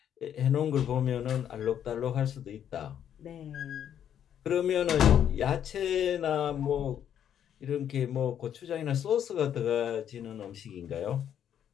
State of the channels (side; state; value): right; quieter; 9.6 dB